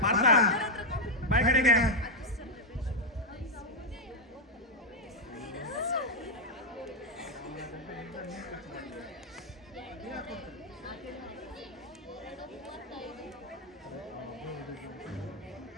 ಪಾರ್ಥ ಬಾಯ್ ಕಡೆಗೆ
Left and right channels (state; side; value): normal; both; correlation 0.01